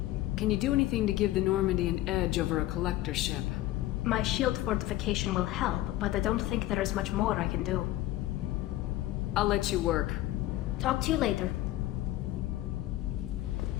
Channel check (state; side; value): quieter; right; 15.7 dB